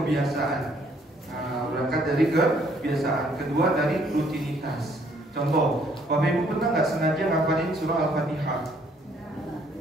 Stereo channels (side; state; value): both; normal; correlation 0.65